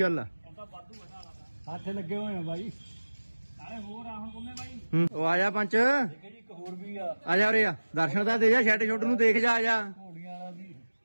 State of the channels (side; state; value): both; inverted; correlation -1.00